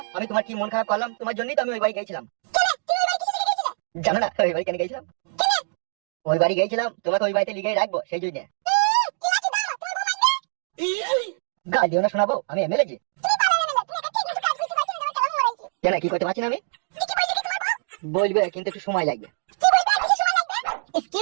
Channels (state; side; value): silent; left; digital silence